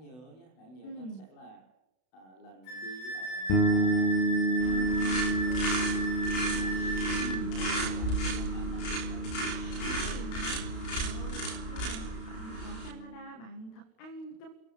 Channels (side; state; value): right; late; 32 ms